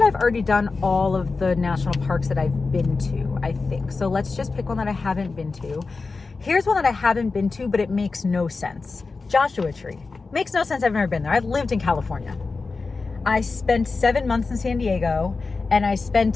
I've already done all of the national parks that I've been to, I think. So let's just pick one that I haven't been to. Here's one that I haven't been to, but it makes no sense. Joshua Tree. Makes no sense. I've never been there. I've lived in California. I spent 7 months in San Diego, and I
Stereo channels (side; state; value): right; quieter; 4.1 dB